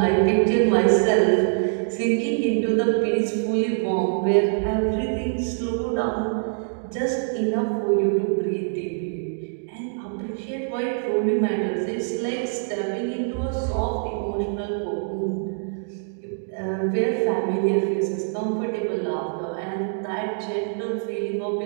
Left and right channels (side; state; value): left; silent; digital silence